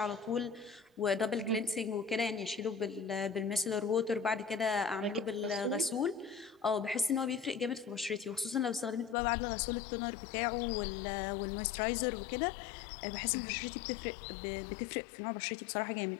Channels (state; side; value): drops out; right; at 9.2 s